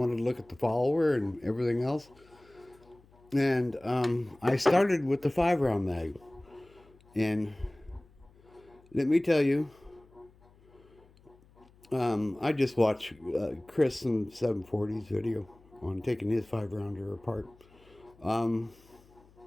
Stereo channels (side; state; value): left; noise; hum, 28 dB below the sound